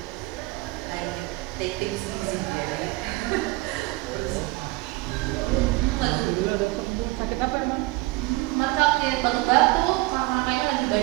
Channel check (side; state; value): left; quieter; 21.5 dB